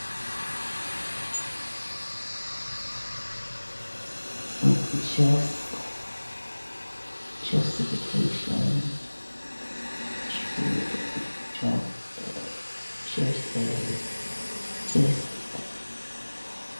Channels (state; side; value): inverted; both; correlation -1.00